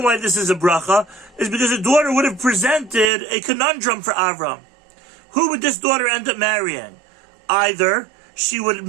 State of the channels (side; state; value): left; drops out; at 3.1 s